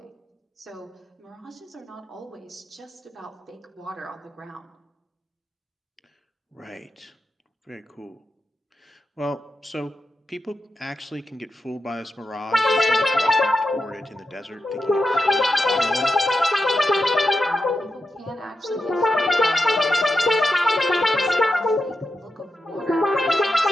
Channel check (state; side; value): normal; both; correlation 0.88